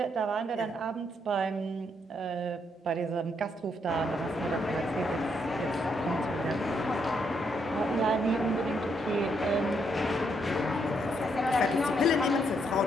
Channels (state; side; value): normal; both; correlation 0.75